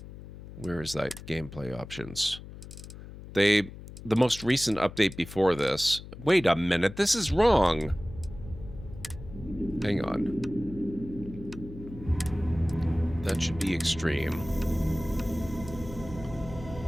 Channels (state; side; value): noise; left; hum, 14 dB below the sound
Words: where is that gameplay options? The most recent update before this. Wait a minute, this is wrong. Hang on. That should be extreme.